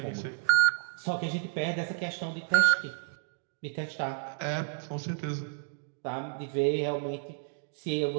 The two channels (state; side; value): silent; left; digital silence